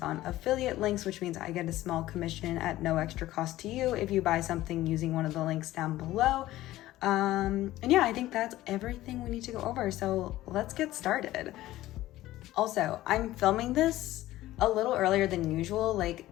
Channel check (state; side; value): quieter; right; 15.7 dB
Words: affiliate links, which means I get a small commission at no extra cost to you if you buy something using one of the links down below. And yeah, I think that's everything we need to go over. So let's get started. Also, I'm filming this a little earlier than usual. Like